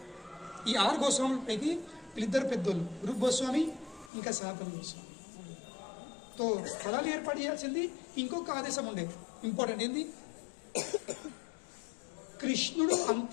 ఈ 6 గోస్వాములపైకి వీళ్ళిద్దరు పెద్దోళ్ళు, రూప్ గోస్వామి ఇంకా సనాతన్ గోస్వామి. తో స్థలాలు ఏర్పాటు చేయాల్సింది. ఇంకొక ఆదేశం ఉండేది, ఇంపార్టెంట్ ఏంది? కృష్ణుడు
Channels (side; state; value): right; drops out; at 4.1 s